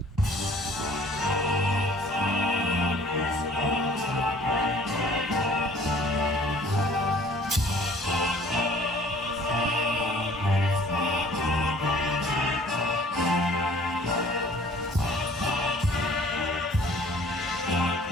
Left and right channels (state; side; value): normal; both; correlation 0.53